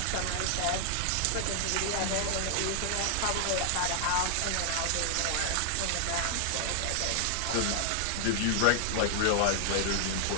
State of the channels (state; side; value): different; both; correlation 0.00